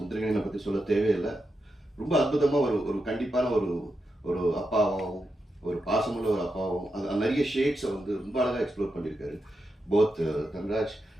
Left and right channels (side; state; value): both; normal; correlation 0.87